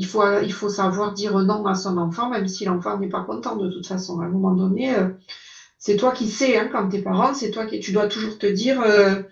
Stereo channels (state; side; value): identical; both; correlation 1.00